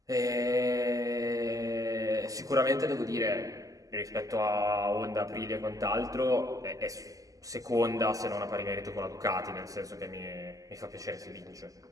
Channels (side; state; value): left; late; 0.17 ms